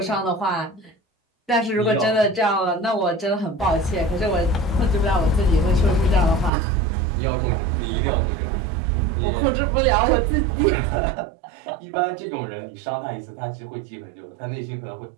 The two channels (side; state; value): left; drops out; at 6.5 s